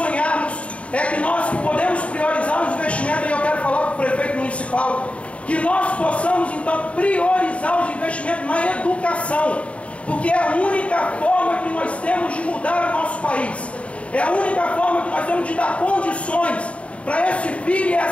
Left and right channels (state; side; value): late; right; 0.063 ms